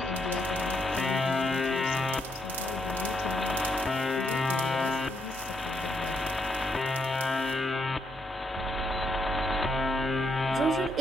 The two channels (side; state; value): both; normal; correlation 0.77